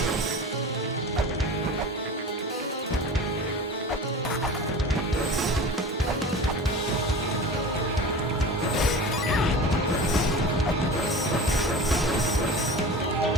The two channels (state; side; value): normal; both; correlation 0.34